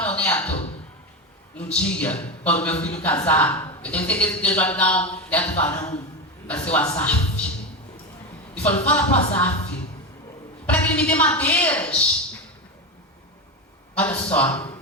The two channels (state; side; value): normal; both; correlation 0.17